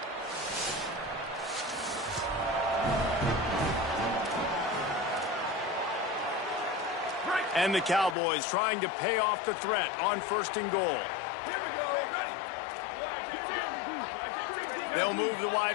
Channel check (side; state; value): right; drops out; at 8.2 s